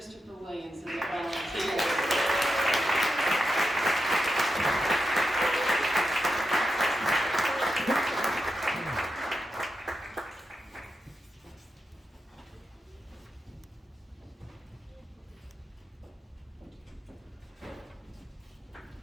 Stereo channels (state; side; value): normal; both; correlation 0.87